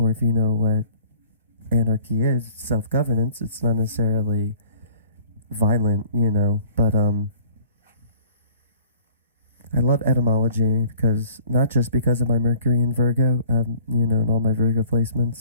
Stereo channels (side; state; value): both; inverted; correlation -0.52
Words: if you know what anarchy is, self-governance, it's not necessarily violent, but I love etymology, because not just because of my Mercury in Virgo, and all my Virgo